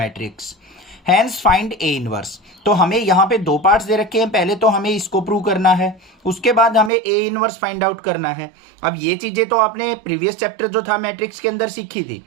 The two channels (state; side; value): drops out; left; at 6.9 s